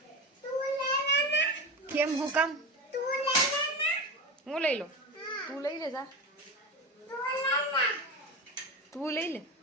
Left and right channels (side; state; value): both; normal; correlation 0.23